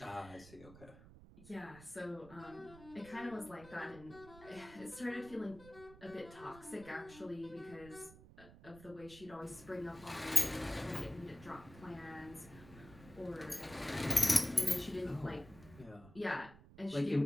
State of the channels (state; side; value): noise; right; rumble, 19 dB below the sound